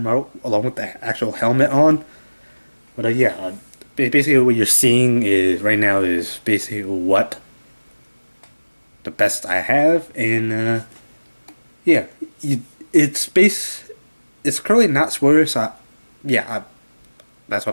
Marvel along with the actual helmet on. But yeah, basically what you're seeing is right now is basically what the best I have, and yeah, it's currently not spoilers. So that's what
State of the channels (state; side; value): inverted; both; correlation -1.00